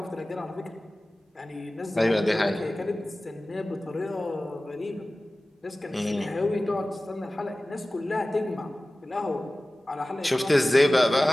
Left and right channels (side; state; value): both; normal; correlation 0.97